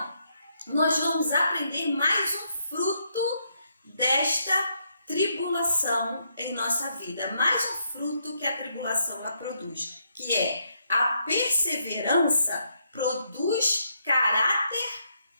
nós vamos aprender mais um fruto desta tribulação em nossa vida, mais um fruto que a tribulação ela produz, que é a perseverança produz caráter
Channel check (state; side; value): inverted; both; correlation -0.76